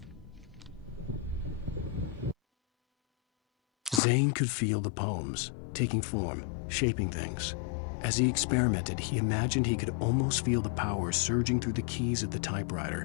Zane could feel the poems, taking form, shaping things. As he experimented, he imagined he could almost feel the power surging through the keys of the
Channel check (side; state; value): right; drops out; at 4.0 s